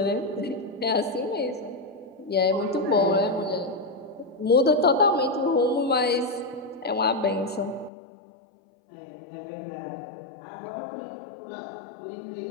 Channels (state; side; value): drops out; right; at 7.9 s